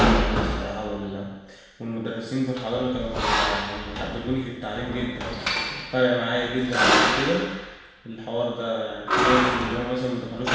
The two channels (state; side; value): identical; both; correlation 1.00